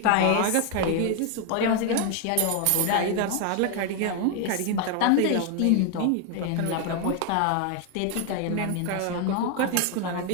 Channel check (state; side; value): different; both; correlation 0.00